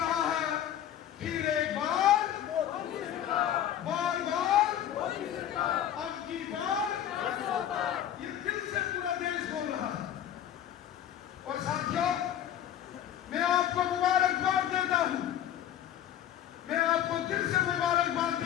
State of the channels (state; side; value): quieter; right; 10.9 dB